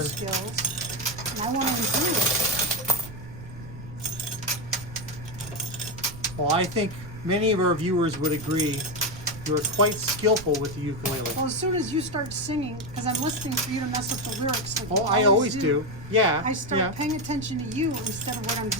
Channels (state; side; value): noise; right; rumble, 14 dB below the sound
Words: turn. skills, and I want to improve. Well, I think many of our viewers would agree you're quite skillful with the ukulele. Well, as soon as you start singing, because I'm listening for you to mess up the lyrics. Like Oh, you I always do. Yeah. I start yeah. paying attention to you instead of what I'm